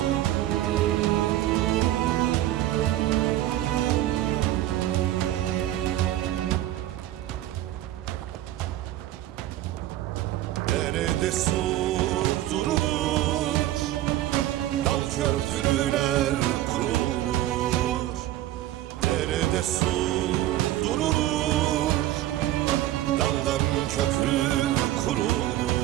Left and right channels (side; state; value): left; quieter; 14.2 dB